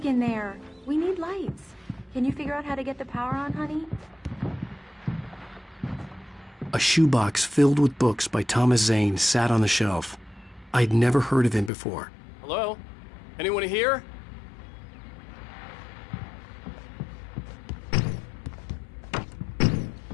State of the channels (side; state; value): right; drops out; at 11.7 s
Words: in there. We need lights. Can you figure out how to get the power on, honey? A shoebox filled with books by Thomas Zane sat on the shelf. I'd never heard of him before. Hello? Anyone here?